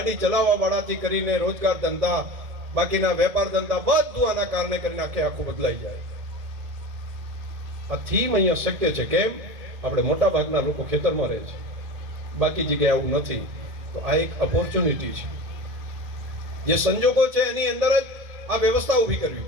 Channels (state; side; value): late; left; 1.8 ms